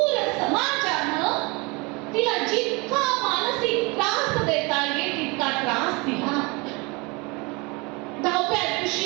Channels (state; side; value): quieter; left; 27.2 dB